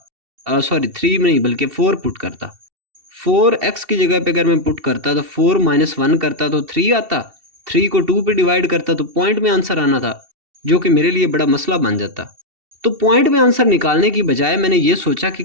सॉरी 3 नहीं बल्कि 4 पुट करता, 4x की जगह पे अगर मैं पुट करता तो 4 - 1 करता तो 3 आता, 3 को 2 पे डिवाइड करता तो पॉइंट में आंसर आना था, जो कि मेरे लिए बड़ा मसला बन जाता। तो पॉइंट में आंसर निकालने की बजाय मैंने ये सोचा कि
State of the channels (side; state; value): left; late; 2.7 ms